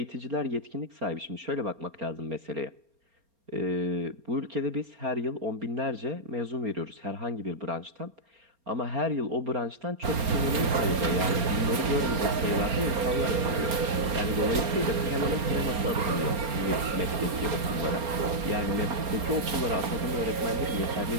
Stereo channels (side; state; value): left; late; 4.3 ms